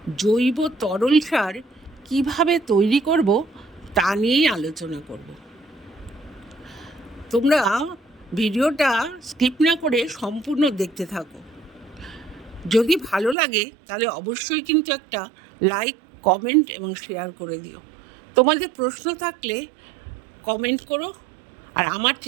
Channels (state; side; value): drops out; left; at 13.4 s